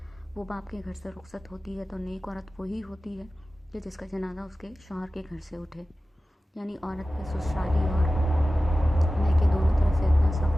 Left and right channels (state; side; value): normal; both; correlation 0.95